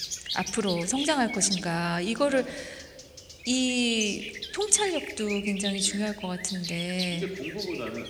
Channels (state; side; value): identical; both; correlation 1.00